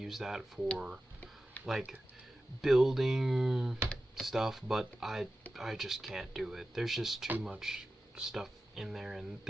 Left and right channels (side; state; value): both; normal; correlation 0.93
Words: that for like building stuff, but I just can't do it. There's just too much stuff in there, and